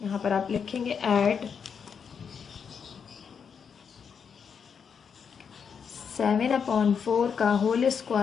पर आप लिखेंगे ऐड 7/4 का whole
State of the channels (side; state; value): right; quieter; 6.7 dB